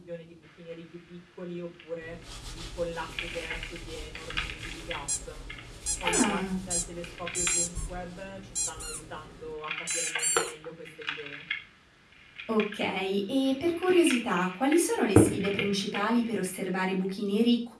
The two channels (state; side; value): identical; both; correlation 1.00